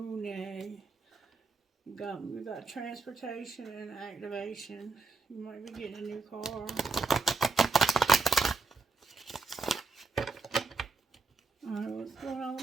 We got transportation and activation. You might be getting a new car. Alright, what's going on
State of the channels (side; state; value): left; quieter; 4.1 dB